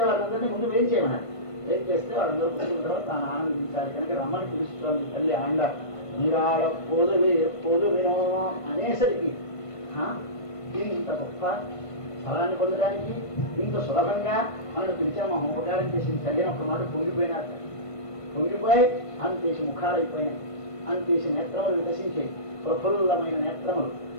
వాళ్ళందరినీ ముందు వేం చేయమన్నారు. వేం చేస్తే వాళ్ళందరూ కూర్చున్న తర్వాత తాను ఆనందించాలి కనుక రమ్మని పిలుస్తుంది తల్లి ఆండ. నీరాడ పొదువినో అనేసరికి ఇంత గొప్ప ఫలాన్ని పొందడానికి ఇంత సులభంగా మనకు పిలిచాము. ఉపకారం చేసింది చదివినప్పుడు మాట పొంగిపోయినారు. పొంగిపోయి అంతేసి ముఖాలు అయిపోయినాయి, అంతేసి నేత్రములు వికసించాయి. ప్రఫుల్లమైన నేత్రములు,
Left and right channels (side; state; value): right; late; 1.5 ms